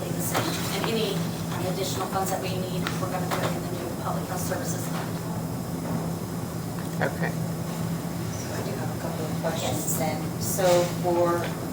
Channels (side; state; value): both; identical; correlation 1.00